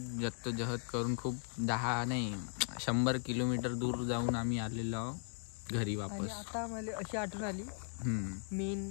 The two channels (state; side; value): silent; right; 53 dB below the other